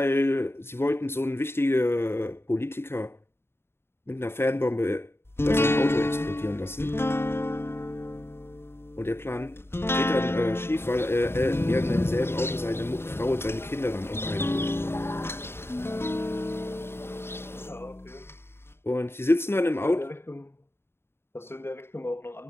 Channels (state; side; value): late; right; 0.11 ms